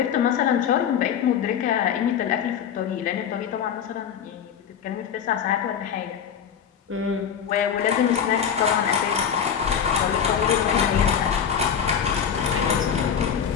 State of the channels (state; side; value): quieter; right; 8.1 dB